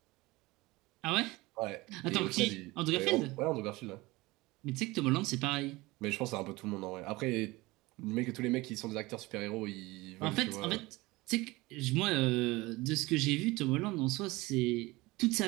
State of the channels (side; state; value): left; quieter; 21.4 dB